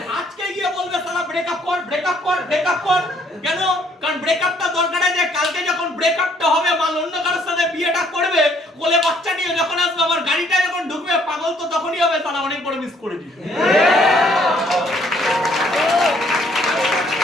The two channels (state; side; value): normal; both; correlation 0.64